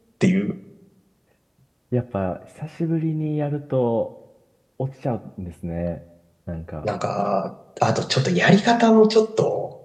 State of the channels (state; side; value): identical; both; correlation 1.00